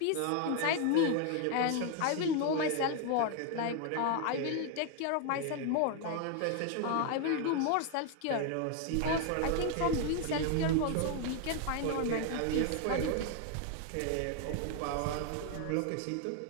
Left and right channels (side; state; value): both; different; correlation 0.00